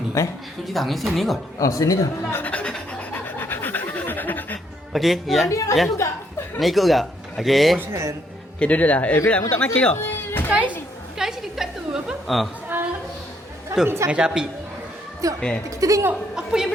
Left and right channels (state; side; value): normal; both; correlation 0.71